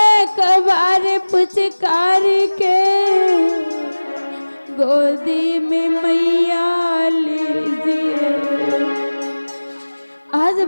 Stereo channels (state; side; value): inverted; both; correlation -1.00